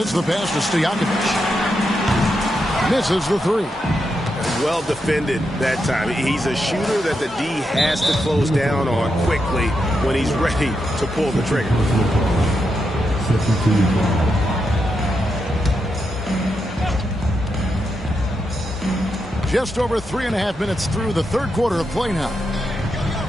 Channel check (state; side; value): normal; both; correlation 0.84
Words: the pass to Stojakovic. Misses the 3. Well defended that time. He's a shooter that the D has to close down on quickly when he's ready to pull the trigger. Just over 3.5 minutes through the third quarter of play now.